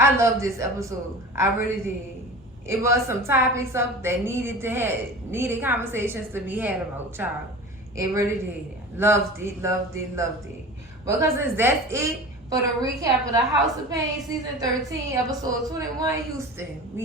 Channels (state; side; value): normal; both; correlation 0.35